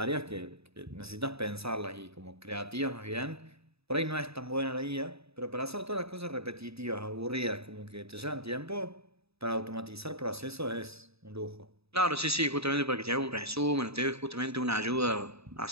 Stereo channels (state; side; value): late; left; 0.78 ms